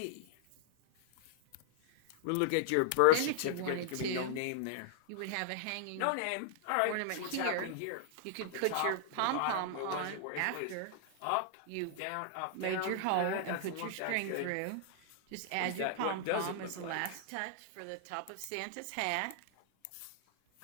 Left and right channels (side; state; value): both; different; correlation -0.01